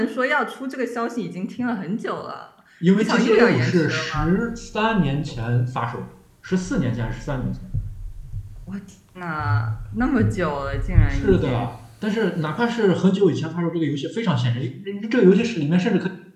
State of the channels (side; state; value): both; identical; correlation 1.00